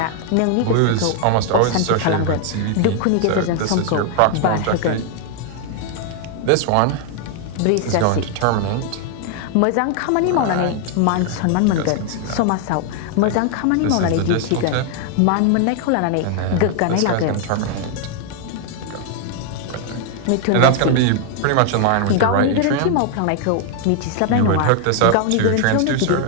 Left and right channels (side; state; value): both; different; correlation 0.00